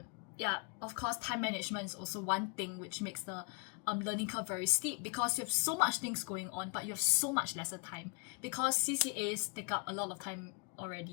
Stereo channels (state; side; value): quieter; right; 32.7 dB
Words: yeah, of course, time management is also one thing which makes the learning curve very steep, because you have so much things going on, but you have so much lesser time. Because CCAs take up a lot of time